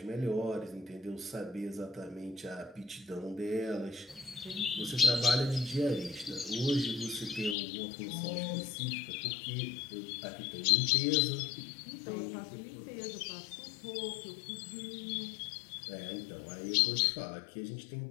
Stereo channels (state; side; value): drops out; right; at 7.6 s